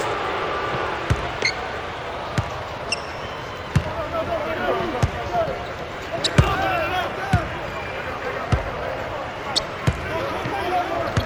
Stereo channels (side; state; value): both; identical; correlation 1.00